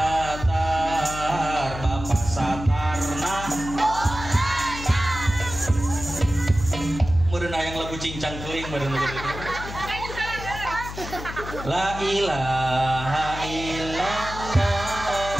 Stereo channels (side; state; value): left; noise; hum, 10 dB below the sound